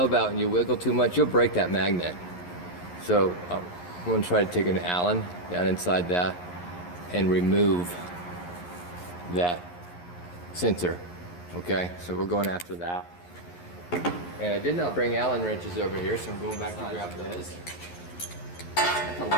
out and you wiggle too much, you'll break that magnet. So I'm going to try to take an Allen down inside that and remove that sensor. Okay, so we're going after that. And I did not bring Allen wrenches over here, so I'm going back to grab those. It's a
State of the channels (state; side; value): late; right; 11 ms